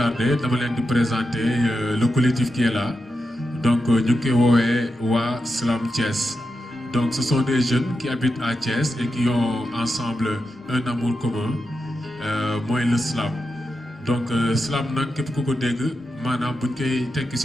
dama leen di présenter le collectif qui est là donc ñu ngi koy woowee waa Slam Thiès donc ce sont des jeunes qui habitent à Thiès et qui ont ensemble un amour commun mooy le slam donc slam nag képp ku ko dégg maanaam buñ koy tekki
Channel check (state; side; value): normal; both; correlation 0.88